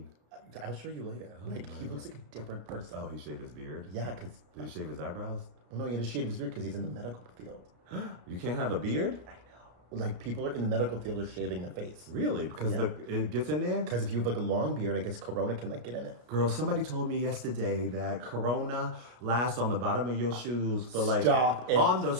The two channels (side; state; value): left; late; 33 ms